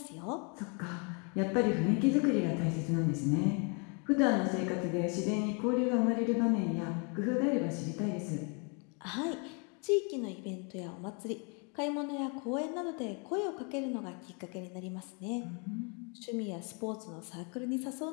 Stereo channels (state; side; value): quieter; right; 35.7 dB